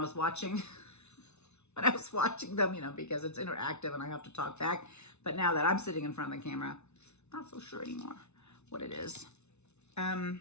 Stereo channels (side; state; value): right; late; 0.81 ms